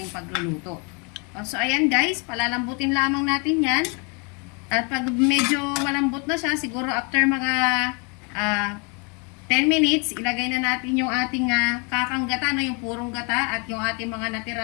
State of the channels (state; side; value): quieter; right; 33.7 dB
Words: pagluluto. So, ayan guys, palalambutin lamang natin yan. At pag medyo malambot na siya, siguro after mga 10 minutes, ilagay na natin yung ating kakanggata, no? Yung purong gata at yung ating mga